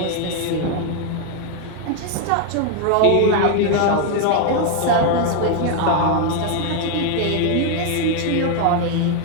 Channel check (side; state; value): both; different; correlation 0.00